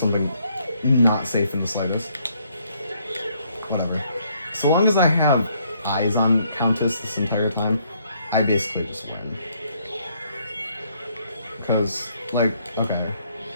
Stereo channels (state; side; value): inverted; both; correlation -0.69